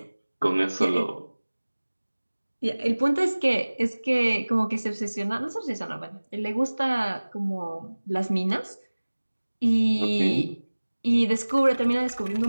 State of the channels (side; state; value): both; inverted; correlation -1.00